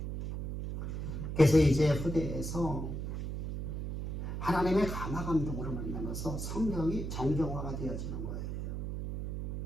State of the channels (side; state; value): right; noise; hum, 4 dB below the sound